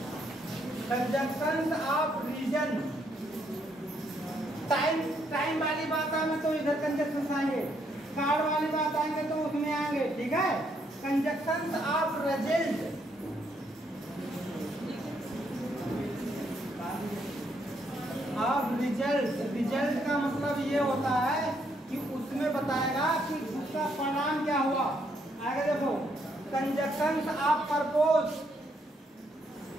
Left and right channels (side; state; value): both; normal; correlation 0.73